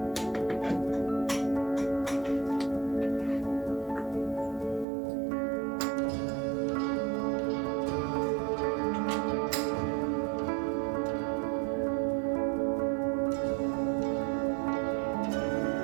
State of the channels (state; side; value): drops out; left; at 4.9 s